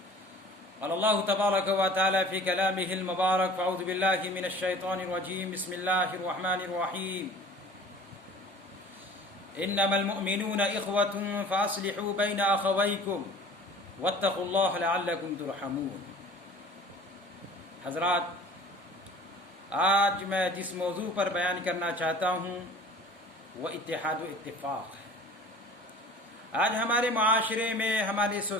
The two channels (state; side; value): normal; both; correlation 0.45